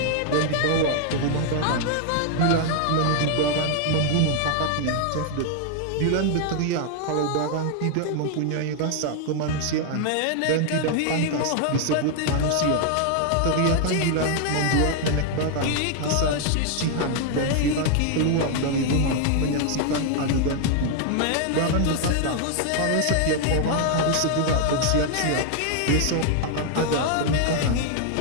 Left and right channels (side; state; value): both; different; correlation 0.00